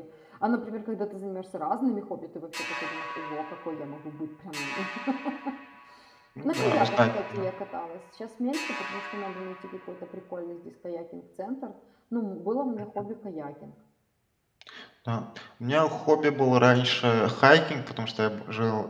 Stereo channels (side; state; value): both; identical; correlation 1.00